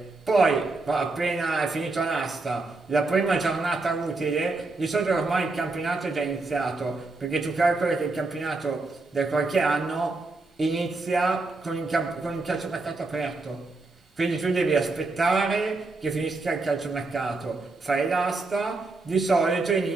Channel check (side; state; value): left; quieter; 3.4 dB